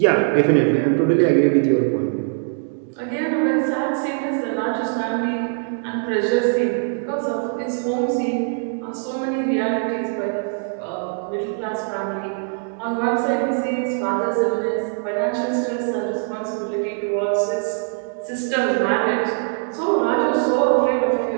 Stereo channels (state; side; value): silent; left; 64 dB below the other